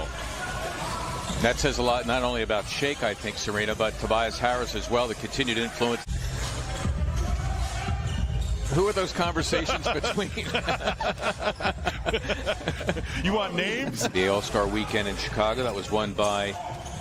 That says a lot, not only about Shake, I think, Serena, but Tobias Harris as well, the continued influence. Who are those conversations between? You want names? The All-Star Weekend in Chicago, that was won by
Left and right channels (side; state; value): both; identical; correlation 1.00